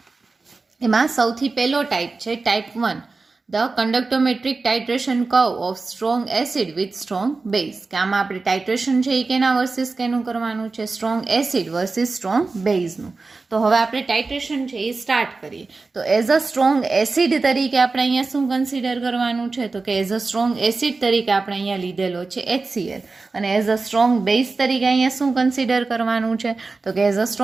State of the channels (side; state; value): left; quieter; 3.9 dB